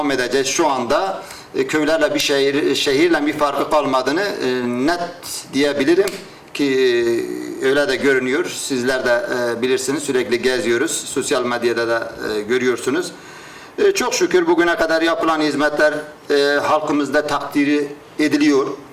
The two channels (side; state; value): both; identical; correlation 1.00